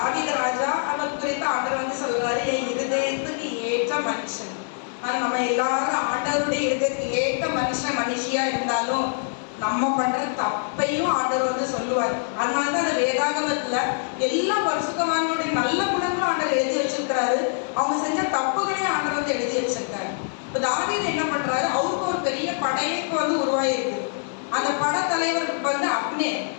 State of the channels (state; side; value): silent; right; 62 dB below the other